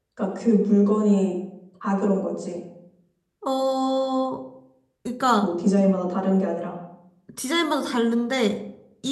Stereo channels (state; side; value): identical; both; correlation 1.00